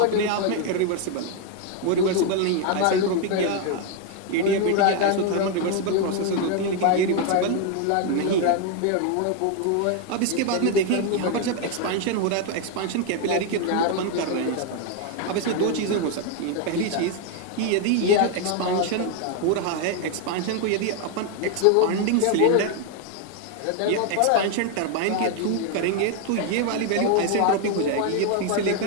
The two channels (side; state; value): both; different; correlation 0.01